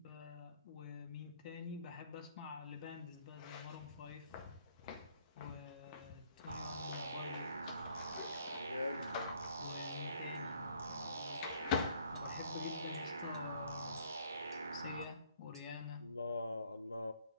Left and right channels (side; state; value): both; inverted; correlation -0.63